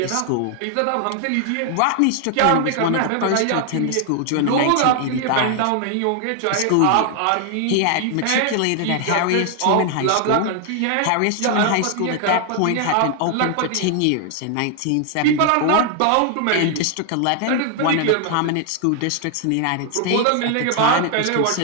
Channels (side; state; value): both; different; correlation 0.00